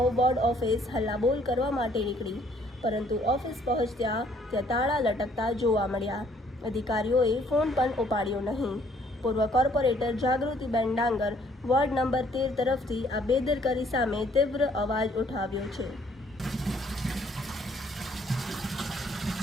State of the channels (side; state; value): both; normal; correlation 0.63